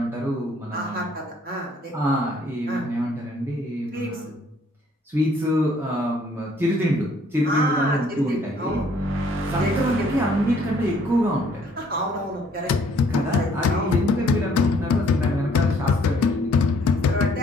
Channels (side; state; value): both; normal; correlation 0.62